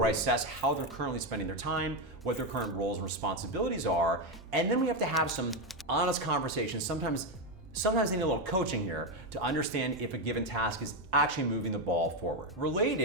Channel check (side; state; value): both; normal; correlation 0.08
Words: I assess how they're currently spending their time, what their current roles and responsibilities are, and then we have to have some honest conversations. Sometimes they need a little coaching here to understand if a given task is actually moving the ball forward.